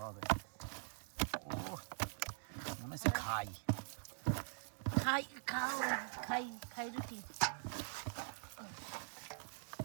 হবে ও মনে হচ্ছে খাই খাই খাও খাই খাই রুটি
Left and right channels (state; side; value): silent; left; digital silence